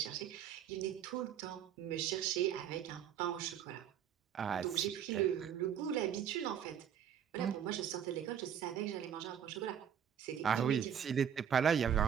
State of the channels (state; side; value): quieter; left; 8.9 dB